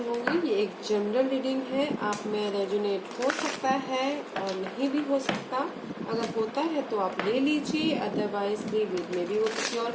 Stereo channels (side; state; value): both; identical; correlation 1.00